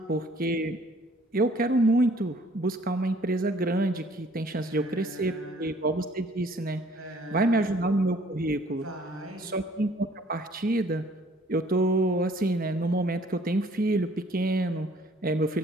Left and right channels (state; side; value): normal; both; correlation 0.58